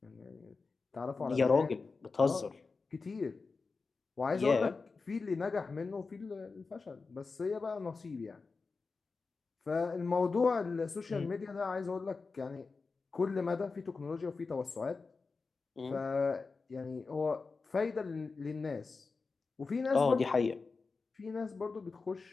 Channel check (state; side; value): quieter; right; 4.3 dB